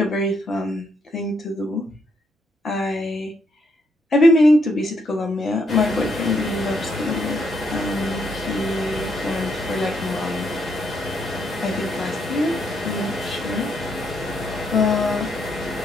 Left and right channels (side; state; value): both; normal; correlation 0.75